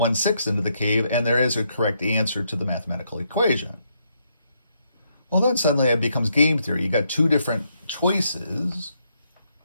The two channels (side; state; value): both; inverted; correlation -0.76